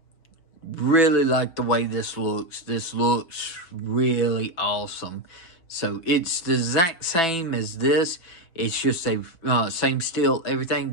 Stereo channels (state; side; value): late; right; 6.0 ms